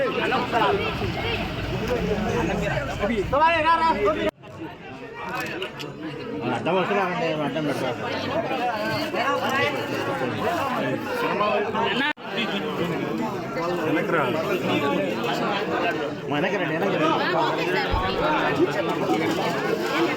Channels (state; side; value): identical; both; correlation 1.00